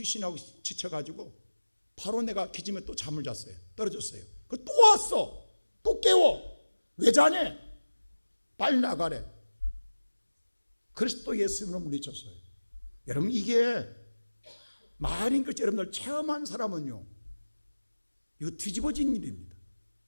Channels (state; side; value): inverted; both; correlation -1.00